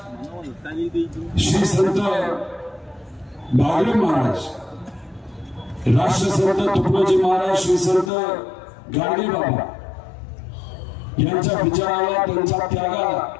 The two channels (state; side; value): drops out; right; at 8.1 s